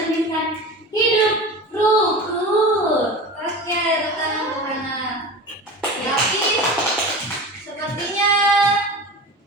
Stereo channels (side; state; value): both; normal; correlation 0.32